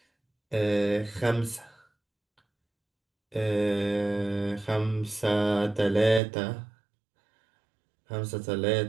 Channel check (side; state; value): left; drops out; at 6.2 s